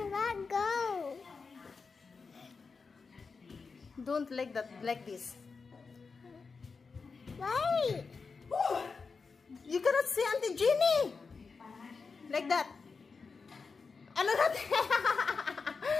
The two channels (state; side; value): quieter; right; 4.8 dB